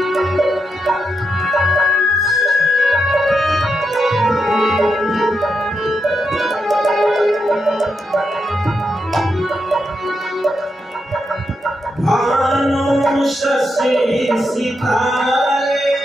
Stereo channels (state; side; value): normal; both; correlation 0.84